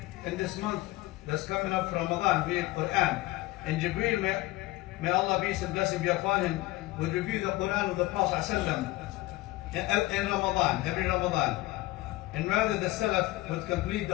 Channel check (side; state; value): right; quieter; 19.0 dB